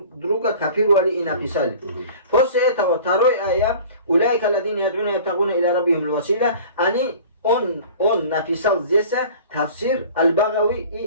копировали и написали. После этого второй аят, «Уляйка ладина ядуна ябтагуна иля раббихим л-васила», он написал здесь тафсир Аль-Багави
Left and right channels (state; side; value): inverted; both; correlation -0.44